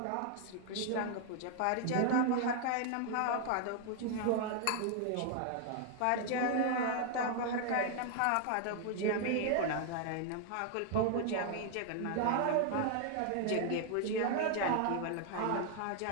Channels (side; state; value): both; different; correlation 0.00